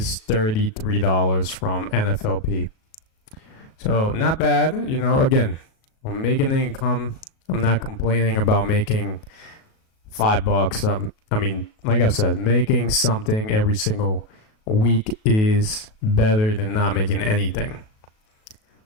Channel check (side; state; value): right; late; 37 ms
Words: $33 from NFLP. So not bad, you know. Again, I'm making income. I'm not complaining about making $5. I mean, like I've said, making something every single week is better than not making anything.